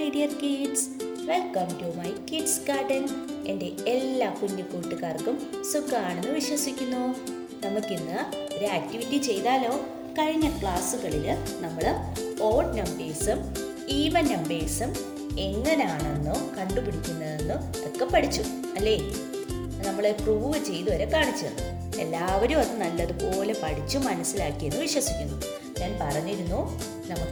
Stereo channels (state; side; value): identical; both; correlation 1.00